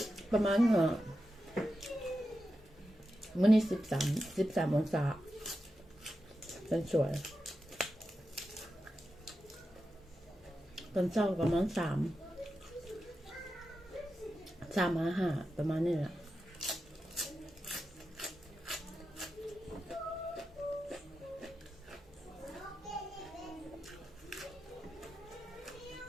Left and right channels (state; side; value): normal; both; correlation 0.90